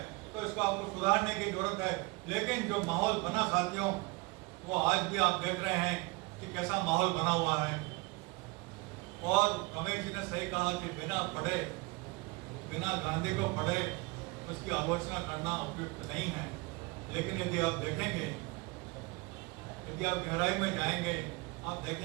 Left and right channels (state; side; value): quieter; left; 25.7 dB